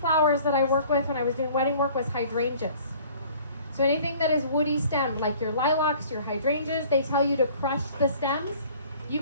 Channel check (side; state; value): both; inverted; correlation -0.51